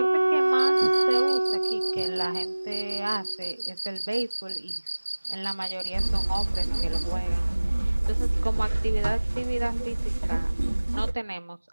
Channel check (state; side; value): inverted; both; correlation -1.00